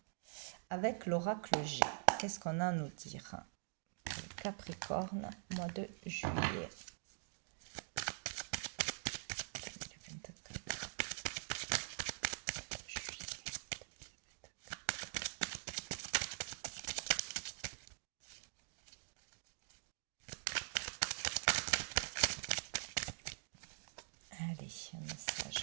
avec l'oracle G. Qu'est-ce qu'on a à nous dire? Capricorne, mois de juillet. Allez, un message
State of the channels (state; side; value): silent; left; digital silence